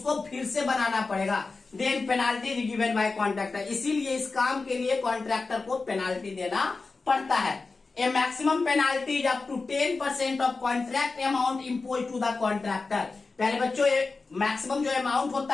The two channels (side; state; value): right; quieter; 4.0 dB